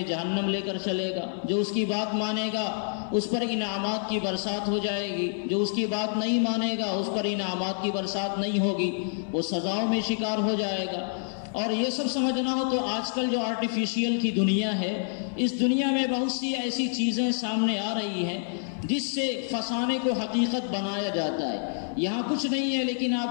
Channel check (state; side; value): silent; right; 60 dB below the other